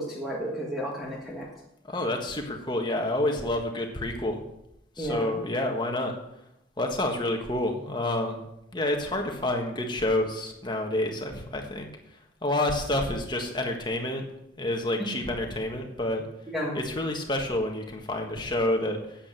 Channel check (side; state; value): both; normal; correlation 0.40